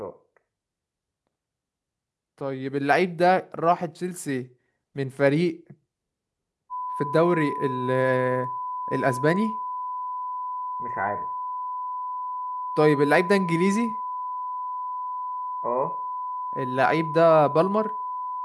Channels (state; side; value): identical; both; correlation 1.00